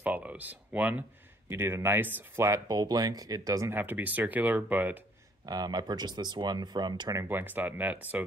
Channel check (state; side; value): normal; both; correlation 0.62